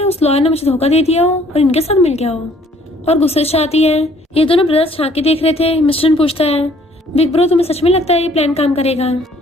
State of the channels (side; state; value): both; normal; correlation 0.60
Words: उस लॉयर ने मुझे धोखा दे दिया हो और इनके साथ मिल गया हो। और गुस्से से आती है। ये दोनों ब्रदर्स झांकी देख रहे थे। मिस्टर पूछता है बिग ब्रो तुम्हें सच में लगता है ये प्लान काम करेगा।